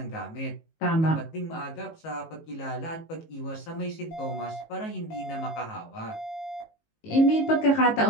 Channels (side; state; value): right; late; 19 ms